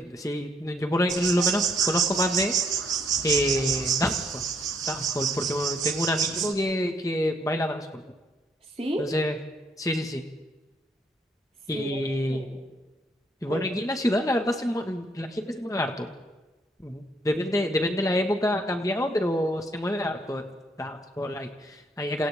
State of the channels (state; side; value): normal; both; correlation 0.69